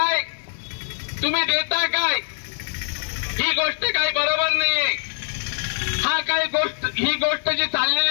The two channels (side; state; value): right; silent; 56 dB below the other